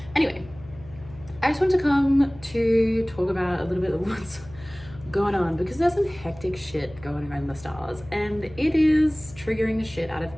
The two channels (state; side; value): noise; left; hum, 19 dB below the sound